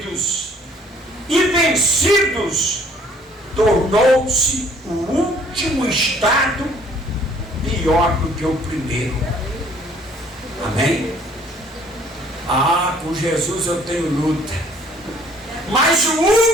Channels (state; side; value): normal; both; correlation 0.59